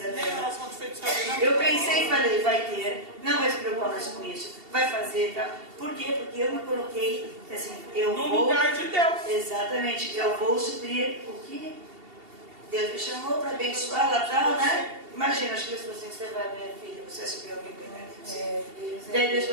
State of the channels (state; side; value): late; left; 2.7 ms